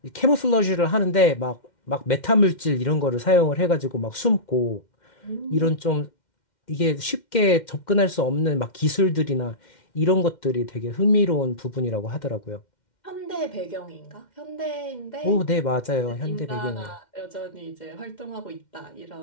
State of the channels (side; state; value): right; late; 2.1 ms